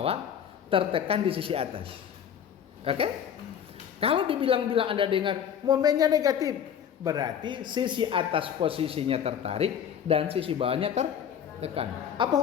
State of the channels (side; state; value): right; quieter; 8.6 dB